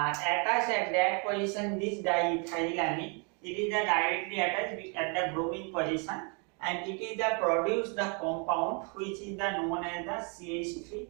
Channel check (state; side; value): quieter; left; 35.9 dB